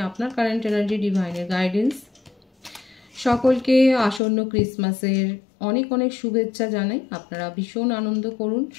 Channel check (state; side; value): drops out; right; at 4.2 s